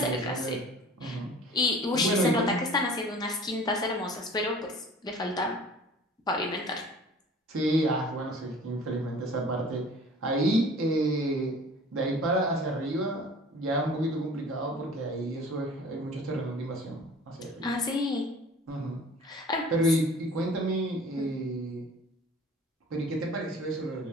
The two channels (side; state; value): both; normal; correlation 0.46